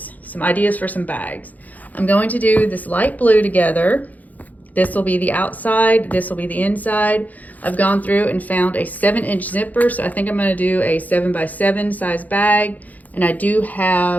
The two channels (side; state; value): right; late; 0.079 ms